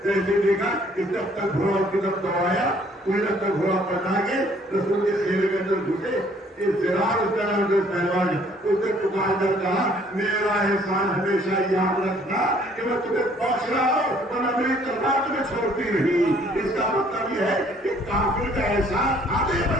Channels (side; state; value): both; normal; correlation 0.60